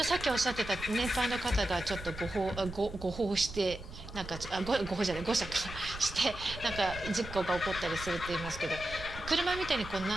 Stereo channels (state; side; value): noise; right; rumble, 12 dB below the sound